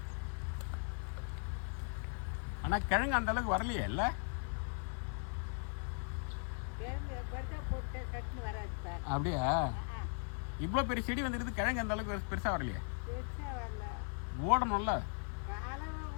ஆனா கிழங்கு அந்த அளவுக்கு வரலையே இல்ல? அப்படியா? இவ்வளோ பெரிய செடி வந்துருக்குது, கிழங்கு அந்த அளவுக்கு பெருசா வரலையே? ஓடணும்ல.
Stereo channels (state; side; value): silent; right; 52 dB below the other